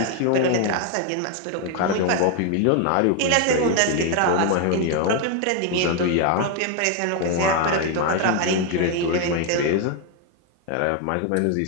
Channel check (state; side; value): different; both; correlation 0.01